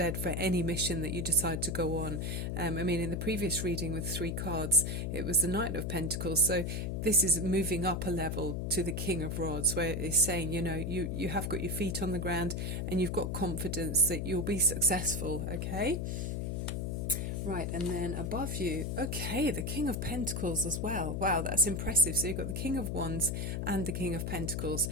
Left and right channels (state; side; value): noise; left; hum, 2 dB below the sound